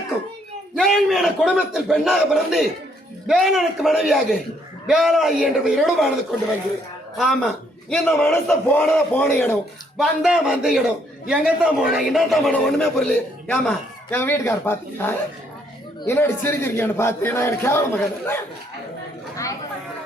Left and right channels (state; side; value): normal; both; correlation 0.69